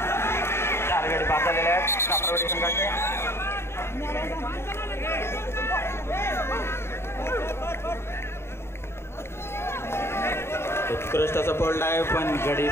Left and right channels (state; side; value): late; right; 0.12 ms